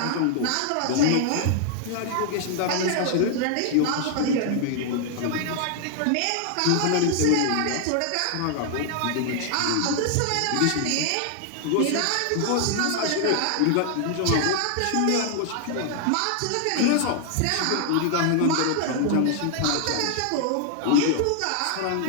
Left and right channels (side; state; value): both; different; correlation 0.00